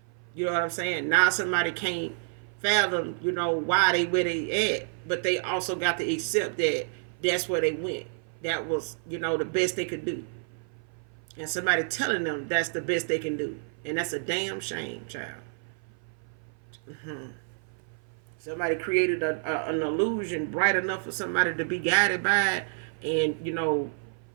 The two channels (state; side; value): silent; left; 55 dB below the other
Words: You know what I'm saying? Now somebody can't fathom, why they where they at, but they also got to accept that that's where they went. That was, the best they could do. And somebody telling them that's the best they can do. And that's a damn shame, child. Somebody created an illusion bright enough for somebody to be guided by it and,